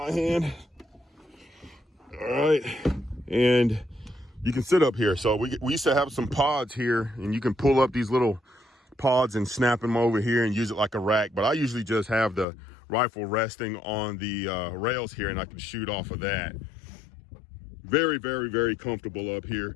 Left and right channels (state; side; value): drops out; right; at 12.5 s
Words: hand. All right, and you can sit up here. So we used to have some pods here, and you can pull up these little pods and snap them over here and use it like a rack. But I usually just have the rifle resting on the rails here, and I can shoot off of that. Very, very, very comfortable up here.